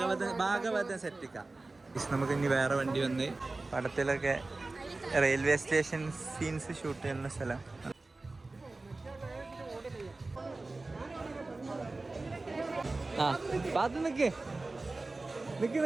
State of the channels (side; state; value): left; quieter; 3.3 dB